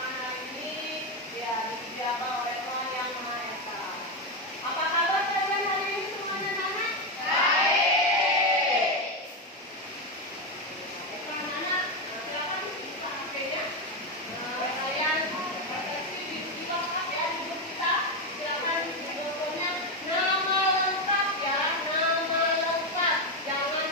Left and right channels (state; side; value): normal; both; correlation 0.09